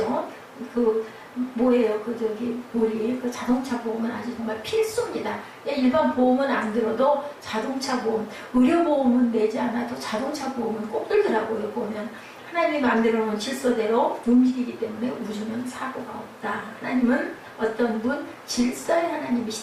뭐예요? 우리 자동차 보험은 아주 정말 필수입니다. 일반 보험은 안 들어도 자동차 보험, 의료보험은 내지 않아도 자동차 보험은 꼭 들더라고요. 보면 하나님이 만들어 놓은 질서대로 움직이기 때문에 우주는 사고가 없다. 하나님은 어떤 분? 질서의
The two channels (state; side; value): identical; both; correlation 1.00